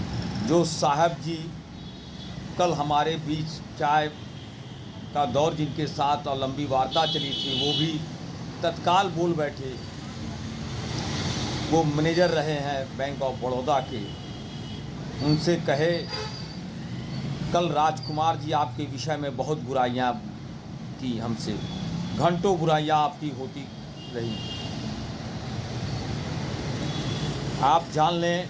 जो साहब जी कल हमारे बीच चाय का दौर जिनके साथ और लंबी वार्ता चली थी, वो भी तत्काल बोल बैठे। वो मैनेजर रहे हैं बैंक ऑफ बड़ौदा के। उनसे कहे, कल राजकुमार जी आपके विषय में बहुत बुराइयां की, हमसे घंटों बुराइयां आपकी होती रही। आप जान लें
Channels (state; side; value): identical; both; correlation 1.00